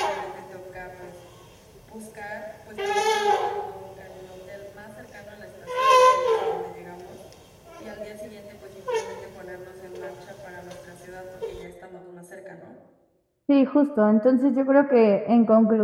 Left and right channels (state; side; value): identical; both; correlation 1.00